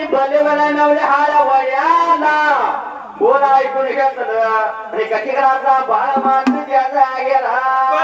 बलिवला नवल्या हाड वड्याला बोला ऐकून घेतलं आणि कटिकराचा बाळ माणूस त्याचा गेला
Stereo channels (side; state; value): both; identical; correlation 1.00